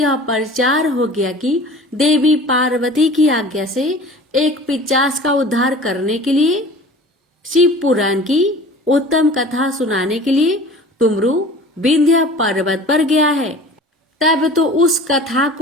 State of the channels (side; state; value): both; normal; correlation 0.42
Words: प्रचार हो गया कि देवी पार्वती की आज्ञा से एक पिशाच का उद्धार करने के लिए शिव पुराण की उत्तम कथा सुनाने के लिए तुमरु विंध्य पर्वत पर गया है। तब तो उस कथा